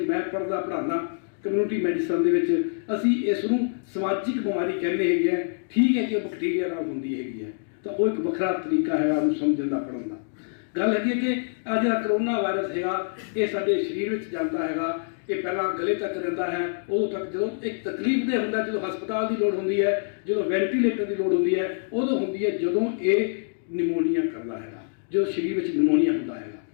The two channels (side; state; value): right; silent; digital silence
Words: ਮੈਂ ਪੜ੍ਹਾਉਂਦਾ ਕਮਿਊਨਿਟੀ ਮੈਡੀਸਨ ਦੇ ਵਿੱਚ, ਅਸੀਂ ਇਸ ਨੂੰ ਸਮਾਜਿਕ ਬਿਮਾਰੀ ਕਹਿੰਦੇ ਹੈਗੇ ਆ। ਠੀਕ ਹੈ ਕਿ ਉਹ ਬੈਕਟੀਰੀਆ ਨਾਲ ਹੁੰਦੀ ਹੈਗੀ ਹੈ, ਤਾਂ ਉਹ ਇੱਕ ਵੱਖਰਾ ਤਰੀਕਾ ਹੈਗਾ ਉਹਨੂੰ ਸਮਝਣ ਦਾ, ਪੜ੍ਹਨ ਦਾ। ਗੱਲ ਹੈਗੀ ਹੈ ਕਿ ਆ ਜਿਹੜਾ ਕਰੋਨਾ ਵਾਇਰਸ ਹੈਗਾ, ਇਹ ਸਾਡੇ ਸਰੀਰ ਵਿੱਚ ਜਾਂਦਾ ਹੈਗਾ। ਇਹ ਪਹਿਲਾਂ ਗਲੇ ਤੱਕ ਰਹਿੰਦਾ ਹੈ, ਉਦੋਂ ਤੱਕ ਜਦੋਂ ਇੱਕ ਤਕਲੀਫ ਦੇ ਹੁੰਦਾ, ਜਦੋਂ ਹਸਪਤਾਲ ਦੀ ਲੋੜ ਹੁੰਦੀ ਹੈ, ਜਦੋਂ ਵੈਂਟੀਲੇਟਰ ਦੀ ਲੋੜ ਹੁੰਦੀ ਹੈ, ਉਦੋਂ ਹੁੰਦੀ ਹੈ ਜਦੋਂ ਇਹ ਨਿਮੋਨੀਆ ਕਰਦਾ ਹੈਗਾ, ਜਦੋਂ ਸਰੀਰ ਵਿੱਚ ਨਿਮੋਨੀਆ ਹੁੰਦਾ ਹੈਗਾ।